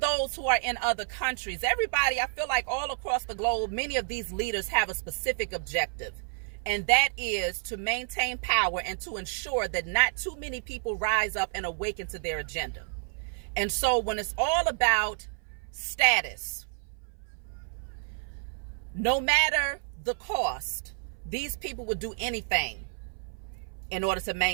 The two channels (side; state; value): left; silent; 57 dB below the other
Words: who are in other countries, everybody, I feel like all across the globe, many of these leaders have a specific objective. And that is to maintain power and to ensure that not too many people rise up and awaken to their agenda. And so when it's all about status, no matter the cost, these people would do anything in order to